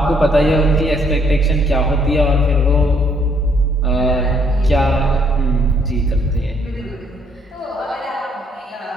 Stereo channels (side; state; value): both; normal; correlation 0.68